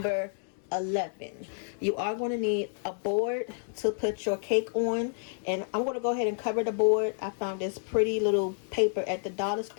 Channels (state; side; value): silent; right; digital silence